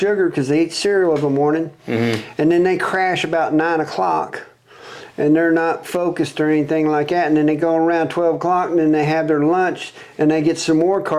because they eat cereal every morning, and then they crash about 9 o'clock, and they're not focused or anything like that. And then they go around 12 o'clock and then they have their lunch and they get some more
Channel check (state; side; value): identical; both; correlation 1.00